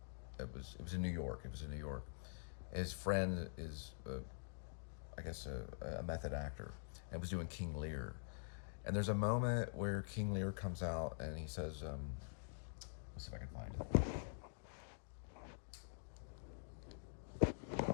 it was in New York. It was in New York. His friend is, I guess, a method actor, and was doing King Lear. And there's a moment where King Lear comes out and he says, let's see if I can find it.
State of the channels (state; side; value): silent; right; digital silence